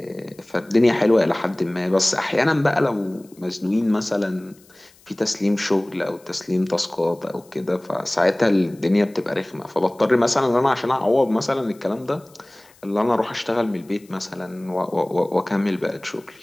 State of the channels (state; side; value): noise; left; hiss, 28 dB below the sound